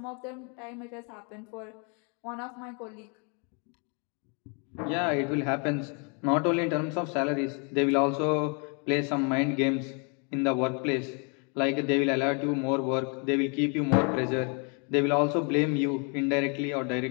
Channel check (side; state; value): right; quieter; 36.4 dB